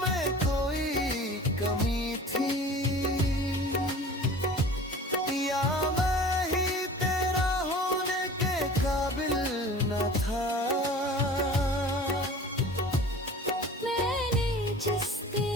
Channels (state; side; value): normal; both; correlation 0.42